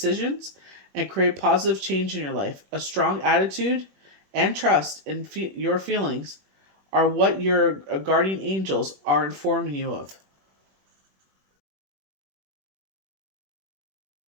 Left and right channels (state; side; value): late; left; 21 ms